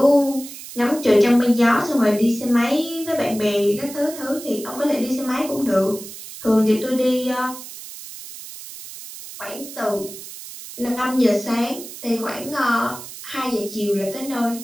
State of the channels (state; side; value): noise; right; hiss, 13 dB below the sound